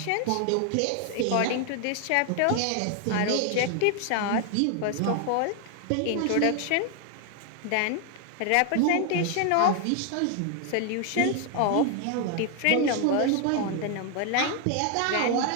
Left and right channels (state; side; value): different; both; correlation 0.00